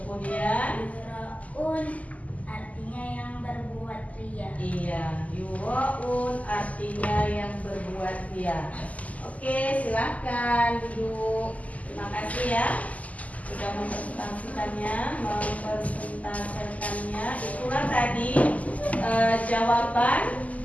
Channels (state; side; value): late; right; 0.073 ms